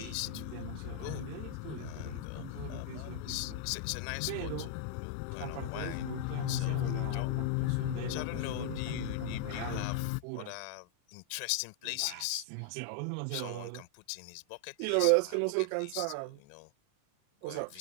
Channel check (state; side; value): different; both; correlation 0.00